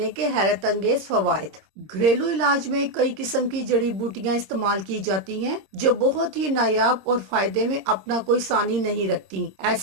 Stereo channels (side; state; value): left; late; 26 ms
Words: के हैरत अंगेज फवायद। घरेलू इलाज में कई किस्म की जड़ी बूटियां इस्तेमाल की जाती हैं जो बहुत ही नायाब और फायदे में अपना कोई सानी नहीं रखती।